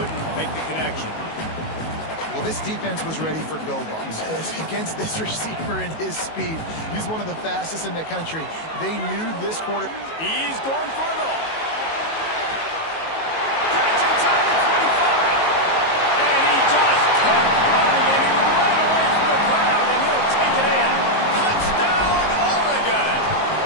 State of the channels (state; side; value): late; right; 19 ms